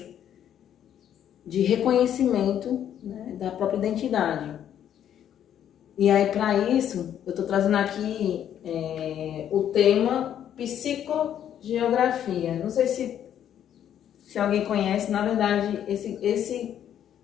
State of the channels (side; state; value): right; quieter; 10.1 dB